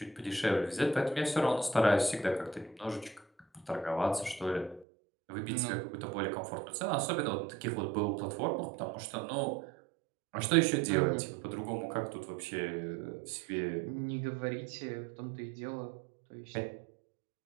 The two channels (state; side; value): drops out; left; at 4.9 s